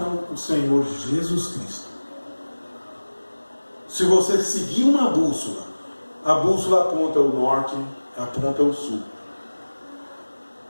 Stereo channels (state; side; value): inverted; both; correlation -1.00